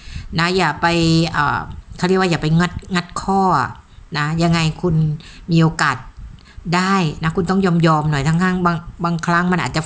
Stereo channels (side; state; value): both; identical; correlation 1.00